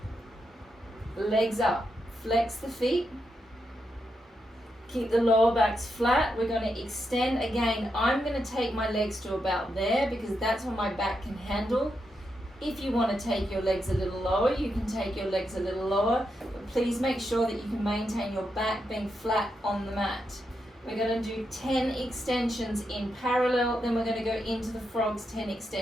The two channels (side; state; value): both; normal; correlation 0.84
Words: Legs up, flex the feet. Keep the lower backs flat. We're going to extend again. I'm going to take my legs to about there because that's what my back can handle. If you want to take your legs a little lower, you can take your legs a little lower, but please make sure that you can maintain your back being flat on the mat. We're going to do 10 extensions in parallel, then we're going to go into the frogs, 10